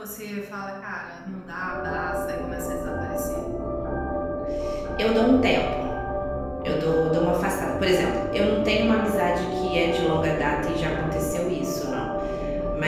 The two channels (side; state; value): both; identical; correlation 1.00